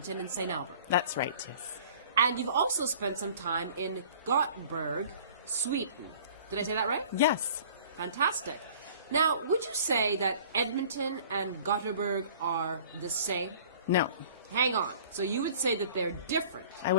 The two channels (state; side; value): inverted; both; correlation -0.49